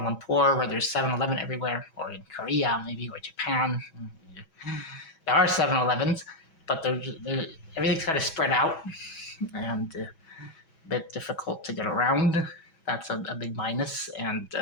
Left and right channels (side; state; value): right; late; 6.2 ms